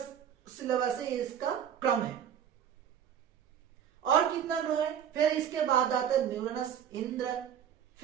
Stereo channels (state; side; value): quieter; left; 9.0 dB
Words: सिलेबस है, इसका क्रम है। और कितना ग्रह है? फिर इसके बाद आता है न्यूरनस, इंद्र,